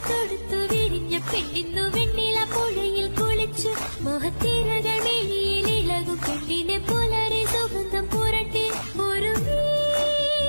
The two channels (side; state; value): both; inverted; correlation -1.00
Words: തൊടുത്തു വിരിഞ്ഞ പെണ്ണിന്നു വെണ്ണില പുഴയിൽ കുളിച്ചു മോഹത്തിരകൾ മിഴിയിൽ ഇളകും പെണ്ണിനെ പുലരി സുഗന്ധം പുരട്ടി ഒരു